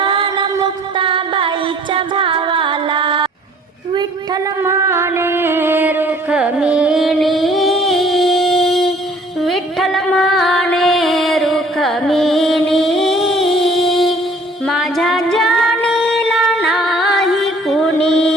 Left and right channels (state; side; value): normal; both; correlation 0.55